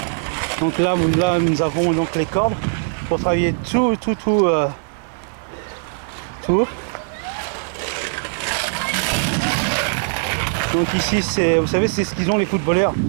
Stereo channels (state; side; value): silent; left; 64 dB below the other